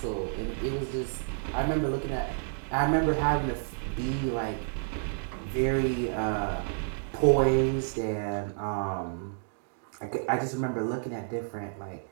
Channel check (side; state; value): left; silent; digital silence